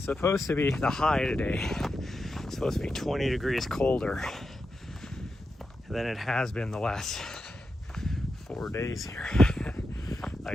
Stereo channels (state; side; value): normal; both; correlation 0.88